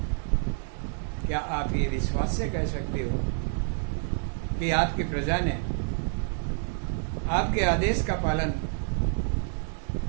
क्या आप ये विश्वास से कह सकते हो कि आपकी प्रजा ने आपके आदेश का पालन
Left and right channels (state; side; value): silent; left; 59 dB below the other